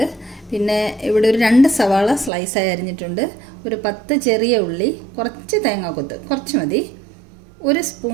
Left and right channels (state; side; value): drops out; left; at 2.3 s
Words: പിന്നെ ഇവിടെ ഒരു 2 സവാള സ്ലൈസായി അരിഞ്ഞിട്ടുണ്ട്, ഒരു 10 ചെറിയ ഉള്ളി, കുറച്ച് തേങ്ങാക്കൊത്ത്, കുറച്ച് മതി, 1